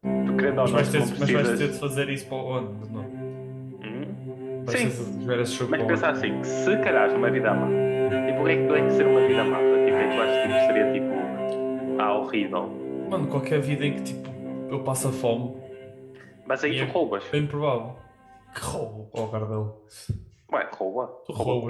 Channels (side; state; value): both; identical; correlation 1.00